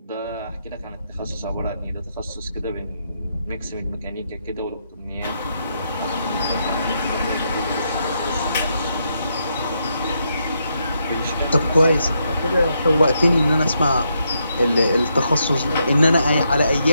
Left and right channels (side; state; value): both; inverted; correlation -0.80